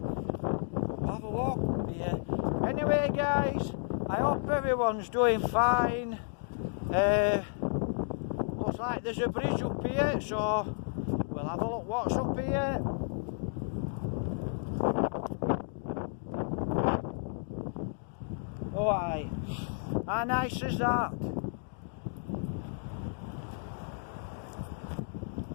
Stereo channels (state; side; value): silent; right; digital silence